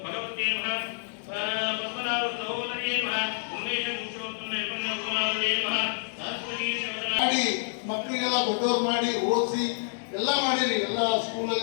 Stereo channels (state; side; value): silent; right; digital silence